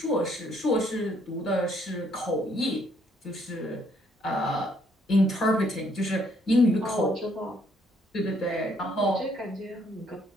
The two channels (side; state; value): both; normal; correlation 0.67